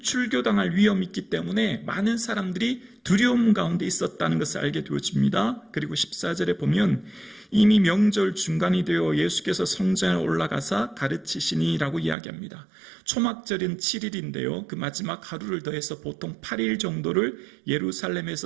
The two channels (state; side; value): drops out; left; at 12.2 s